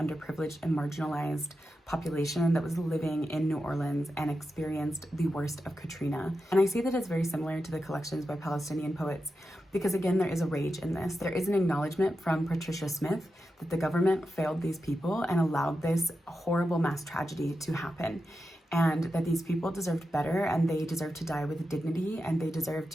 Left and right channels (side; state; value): both; normal; correlation 0.89